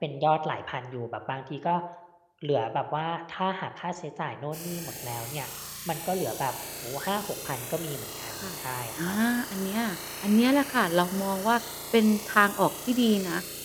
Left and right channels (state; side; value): identical; both; correlation 1.00